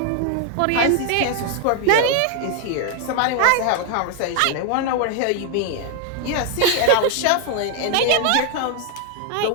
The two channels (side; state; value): both; different; correlation 0.00